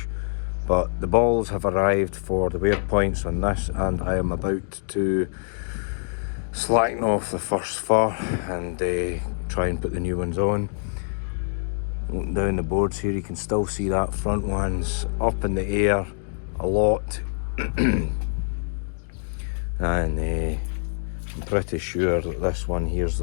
but the balls have arrived for the wear points on this, and I am about to slacken off the first fur and try and put the new ones on. Looking down the boards here, you can still see that front one's up in the air a lot. And I'm pretty sure that this one here's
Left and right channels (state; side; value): silent; right; digital silence